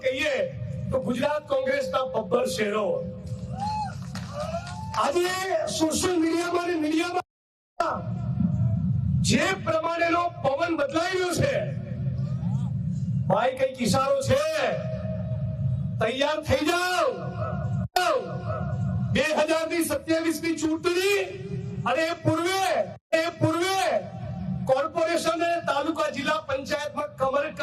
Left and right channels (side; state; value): both; identical; correlation 1.00